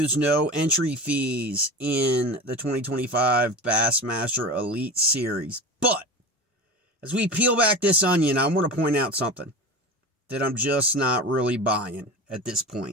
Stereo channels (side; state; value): both; normal; correlation 0.30